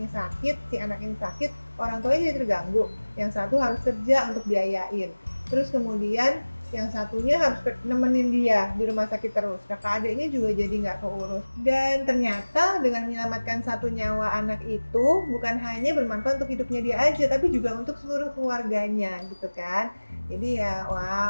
sakit, si anak ini sakit, orang tuanya jadi terganggu. Yang satu harus kerja untuk biayain. Terus kemudian yang satunya harus nemenin dia di rumah sakit terus. Kakak adiknya juga jadi nggak keurus. Dan ternyata dengan menyelamatkan satu nyawa anak itu bukan hanya bermanfaat untuk hidupnya dia aja, tapi juga untuk seluruh keluarganya gitu kan. Jadi ya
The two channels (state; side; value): inverted; both; correlation -1.00